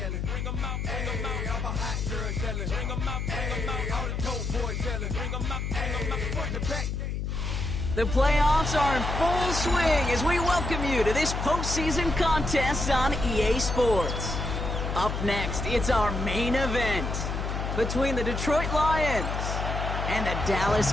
yelling. Bring 'em out, bring 'em out. I'm a hot girl yelling. Bring 'em out, bring 'em out. All the dope boys yelling. Bring 'em out, bring 'em out. Front to back. The playoffs are in full swing as we welcome you to this postseason contest on EA Sports. Up next, it's our main event between the Detroit Lions and the Dallas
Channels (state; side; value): noise; left; hum, 2 dB below the sound